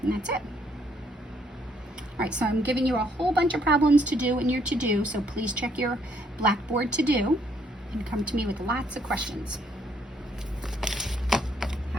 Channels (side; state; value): both; normal; correlation 0.69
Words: And that's it. All right, so I'm giving you a whole bunch of problems to do in your to-do, so please check your Blackboard to-do and come to me with lots of questions.